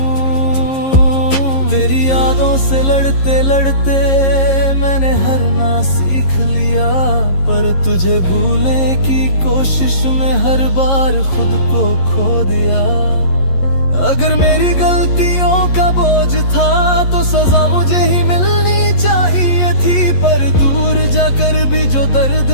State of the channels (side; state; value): right; late; 11 ms